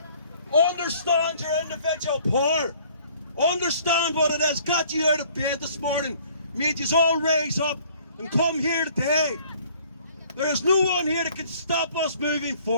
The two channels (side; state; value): both; inverted; correlation -0.57